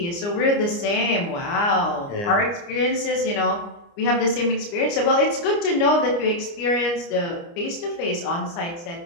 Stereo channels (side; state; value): right; late; 29 ms